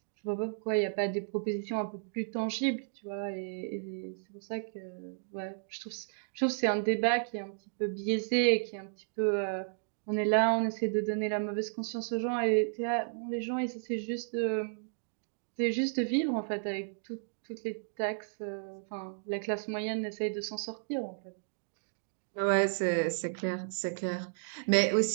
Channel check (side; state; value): left; silent; digital silence